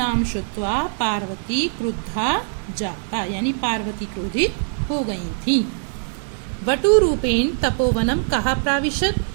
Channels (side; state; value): left; silent; digital silence